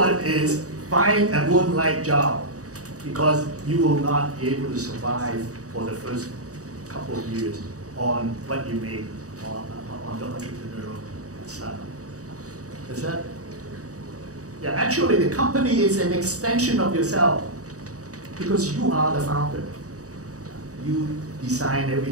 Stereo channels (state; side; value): late; left; 0.66 ms